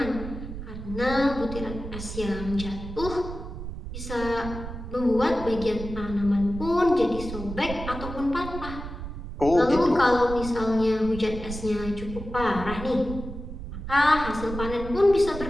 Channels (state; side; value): noise; right; rumble, 9 dB below the sound